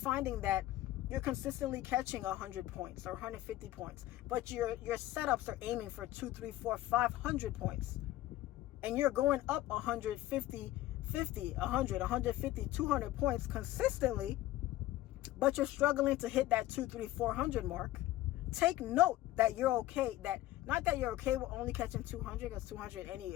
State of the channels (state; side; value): quieter; right; 15.6 dB